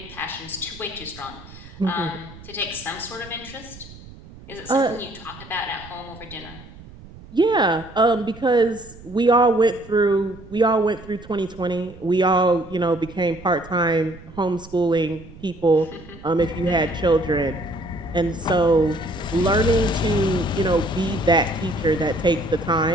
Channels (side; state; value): right; noise; rumble, 19 dB below the sound